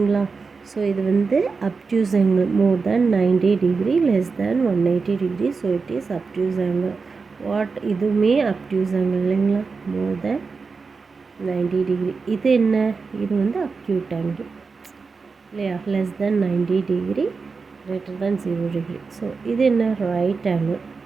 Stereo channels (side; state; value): left; quieter; 4.7 dB